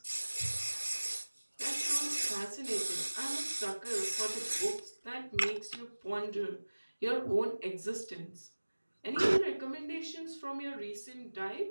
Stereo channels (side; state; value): both; inverted; correlation -1.00